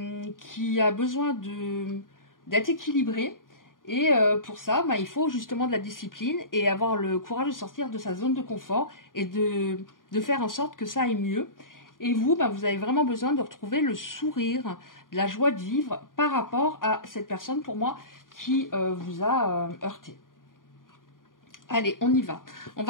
qui a besoin d'être équilibré. Et pour ça, il faut justement de la discipline et avoir le courage de sortir de sa zone de confort et de faire en sorte que ça aille mieux. Et vous, vous avez vraiment besoin de retrouver le sourire, de la joie de vivre par rapport à cette personne, pour moi, qui vous a heurté. Allez, on y va. On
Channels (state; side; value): late; right; 0.90 ms